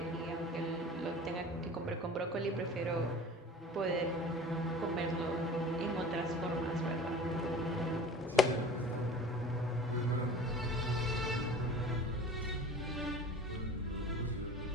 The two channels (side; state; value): both; normal; correlation 0.41